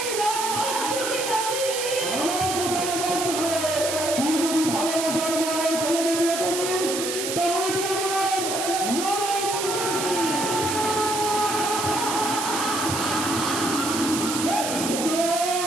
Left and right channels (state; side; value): noise; right; hiss, 3 dB below the sound